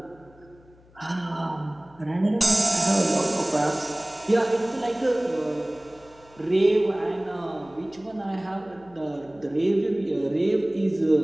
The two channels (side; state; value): left; noise; hum, 27 dB below the sound